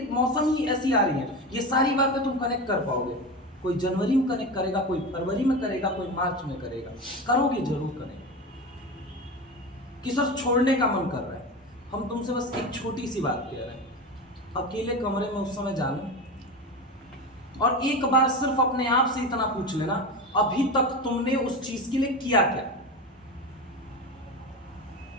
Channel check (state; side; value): normal; both; correlation 0.24